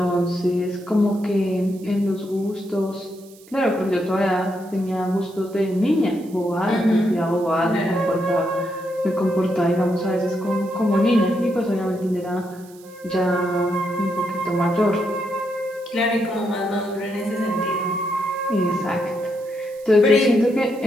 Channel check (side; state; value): right; noise; hiss, 25 dB below the sound